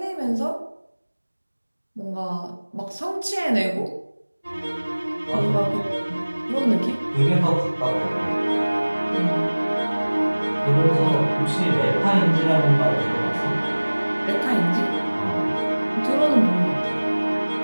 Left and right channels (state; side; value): inverted; both; correlation -1.00